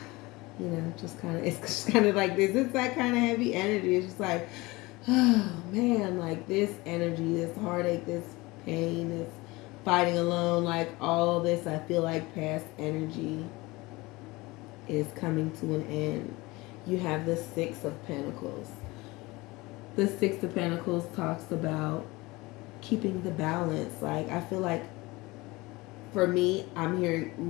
you know, just kind of, it's just kind of like this. It's that kind of heavy energy. It's just like, oh man, like this energy, this heartache, this pain, this fighting alone, like all this, I feel like past energy is coming to an end. You have the Six of Pentacles. The Six of Pentacles talks about keeping the balance. Like, I feel like for me, I'm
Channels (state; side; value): quieter; right; 22.1 dB